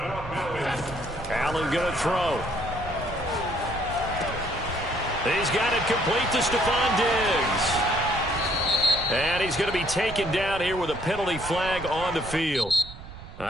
Allen going to throw. He's got it complete to Stephon Diggs. And he's going to be taken down here with a penalty flag on the field.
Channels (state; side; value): noise; right; rumble, 14 dB below the sound